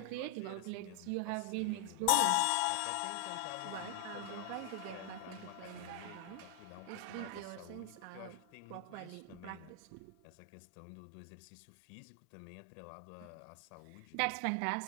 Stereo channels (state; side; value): different; both; correlation 0.00